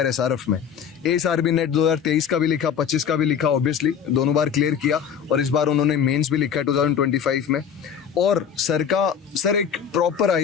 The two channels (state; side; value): quieter; right; 7.7 dB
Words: SRF में। ASRB नेट 2023 का भी लिखा, 25 का भी लिखा, ऑब्वियसली दोनों बार क्लियर किया, और इस बार उन्होंने मेंस भी लिखा है 2025 में। और सर एक प्रॉपर